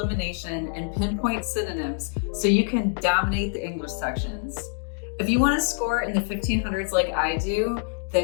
and pinpoint synonyms so you can dominate the English sections. If you want to score in the 1500s like I do,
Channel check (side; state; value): right; silent; digital silence